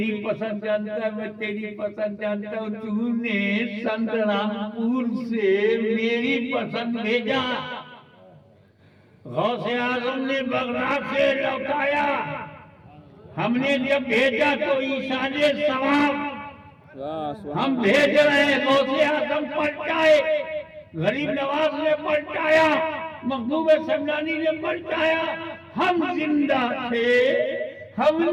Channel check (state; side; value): identical; both; correlation 1.00